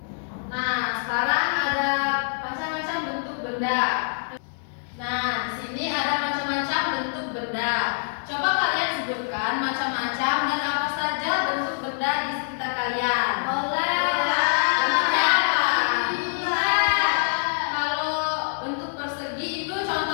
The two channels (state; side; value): silent; right; digital silence